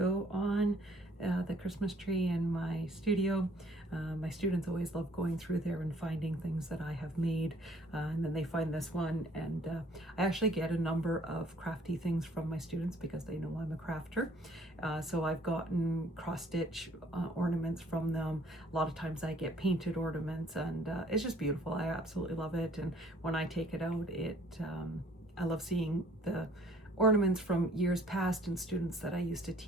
on the Christmas tree in my studio. My students always love going through there and finding things that I have made, and then they find this one, and I actually get a number of crafty things from my students because they know I'm a crafter. So I've gotten cross-stitch ornaments from them. A lot of times I get painted ornaments, and it's just beautiful. I absolutely love it, and when I take it out, I love seeing the ornaments from years past and students that I used to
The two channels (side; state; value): both; normal; correlation 0.59